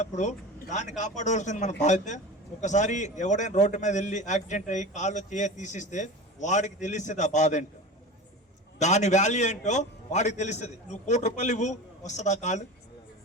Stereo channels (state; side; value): normal; both; correlation 0.32